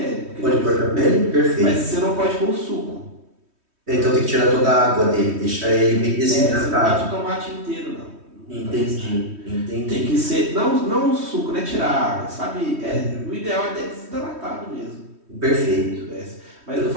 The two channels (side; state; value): left; late; 3.1 ms